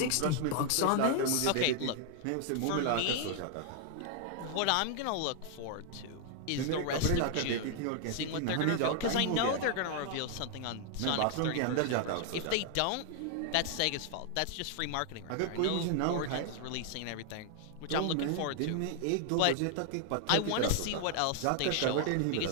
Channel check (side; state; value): both; different; correlation 0.00